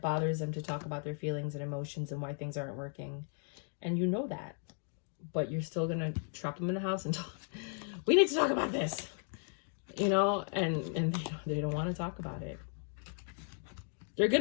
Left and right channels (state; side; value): silent; right; 54 dB below the other